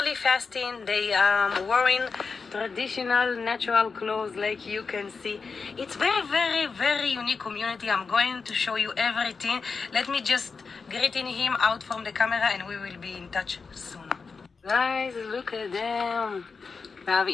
fasting. They are wearing traditional natural clothes, like you can see. It's very, very, very unique community. I'm going to show you everything. Let me just greeting him out from the camera and we will be in touch soon. Guys, look at them. We have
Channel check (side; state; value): right; quieter; 4.9 dB